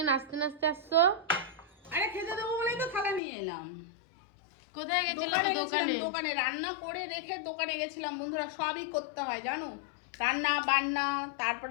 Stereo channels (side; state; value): right; drops out; at 3.2 s